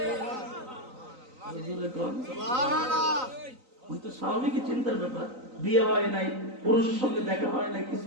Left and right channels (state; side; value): late; left; 3.9 ms